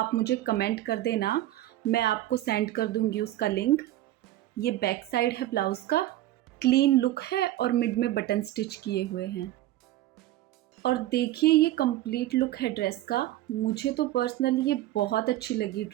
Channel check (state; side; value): quieter; left; 14.7 dB